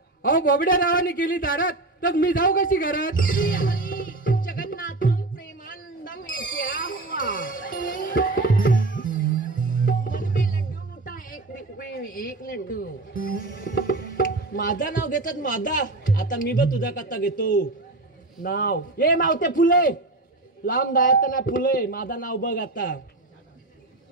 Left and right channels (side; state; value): left; quieter; 3.0 dB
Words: अहो बोबड्या नावाने केली दारात तर मी जाऊ कशी घरात? जगन्नाथम प्रेमानंदम येत्या हुआ. एक लड्डू. माझा नाव घेतात माझा. आता मी बघ तुझा कथा घेतो नाव. ये मावते फुले लांब जायचं ना फुले. माझा नाव बघ आता.